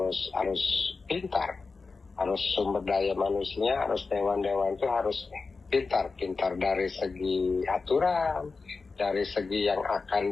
pintar, harus sumber daya manusia, harus dewan-dewan itu harus pintar dari segi aturan, dari segi yang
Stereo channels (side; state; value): right; quieter; 4.3 dB